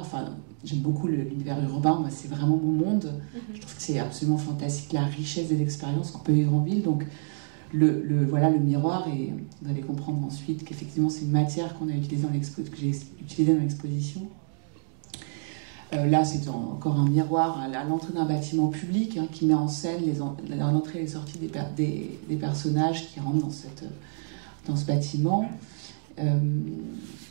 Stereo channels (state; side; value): silent; left; digital silence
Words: j'aime beaucoup l'univers urbain. Moi, c'est vraiment mon monde. Je trouve que c'est absolument fantastique, la richesse des expériences qu'on peut vivre en ville. Donc, le miroir, et vous allez comprendre ensuite qu'effectivement, c'est une matière qu'on a utilisée que j'ai utilisée dans l'exposition. Là, c'est encore un miroir à l'entrée d'un bâtiment public qui met en scène l'entrée et les sorties des personnages qui rentrent dans ce bâtiment.